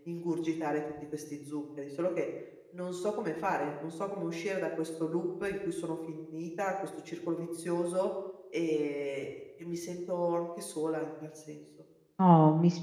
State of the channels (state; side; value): identical; both; correlation 1.00